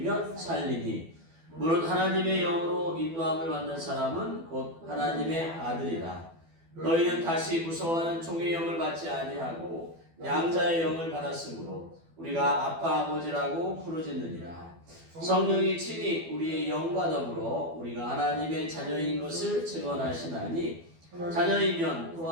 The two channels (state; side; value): late; left; 12 ms